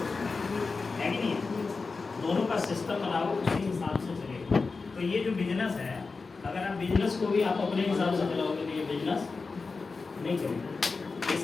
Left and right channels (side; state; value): right; quieter; 4.3 dB